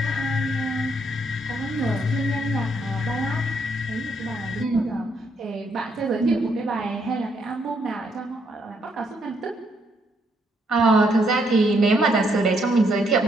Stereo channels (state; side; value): normal; both; correlation 0.73